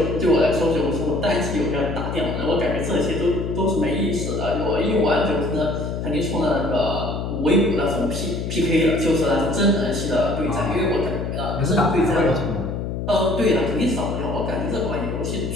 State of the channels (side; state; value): left; noise; hum, 4 dB below the sound